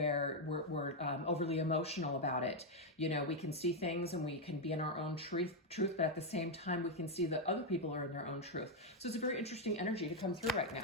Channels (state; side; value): normal; both; correlation 0.02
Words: we're overly emotional about it. You know, we can see things and we can be in our own truth, but at the same time, we can see that other people are in their own truth. So it's a very interesting energy to come through right